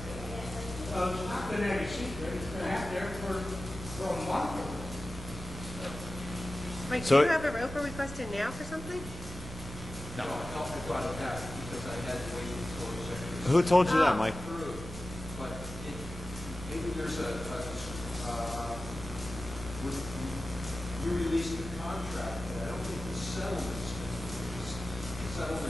not been any secret. It's been out there for a month. Mike, So- do you have a ROFR request in now for something? No, I brought it back because I had to wait for a second. Who told you that, Mike? But maybe there's you released the contract, but I don't think the settlement's been released. The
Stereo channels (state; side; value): normal; both; correlation 0.97